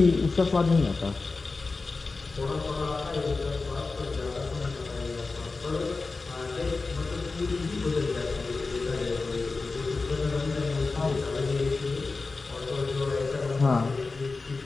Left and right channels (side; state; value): right; quieter; 3.9 dB